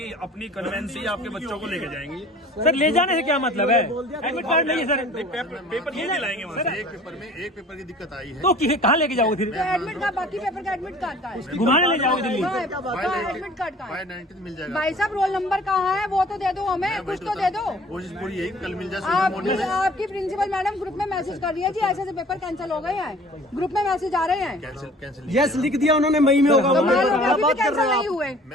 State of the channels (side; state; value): both; normal; correlation 0.49